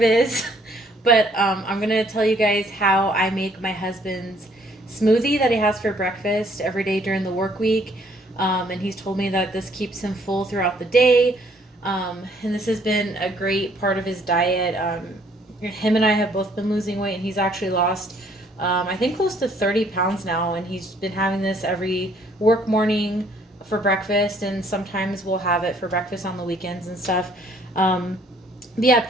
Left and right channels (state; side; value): normal; both; correlation 0.63